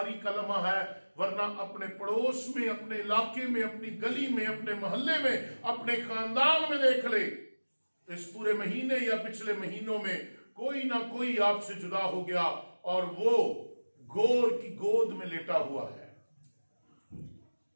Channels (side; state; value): both; inverted; correlation -1.00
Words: का लम्हा है, वरना अपने पड़ोस में, अपने इलाके में, अपनी गली में, अपने मोहल्ले में, अपने खानदान में देख ले, इस पूरे महीने या पिछले महीनों में कोई ना कोई आपसे जुदा हो गया और वो गोर की गोद में लेटा हुआ है।